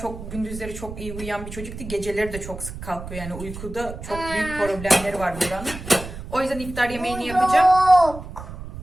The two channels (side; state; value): right; noise; rumble, 11 dB below the sound